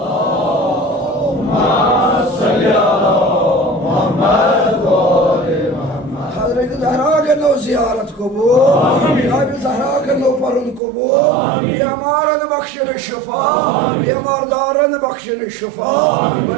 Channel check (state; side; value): drops out; left; at 10.8 s